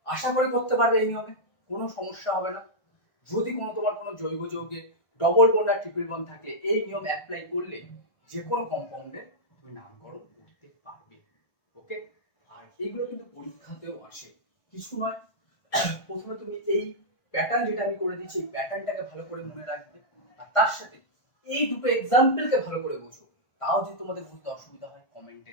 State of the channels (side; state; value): right; late; 1.5 ms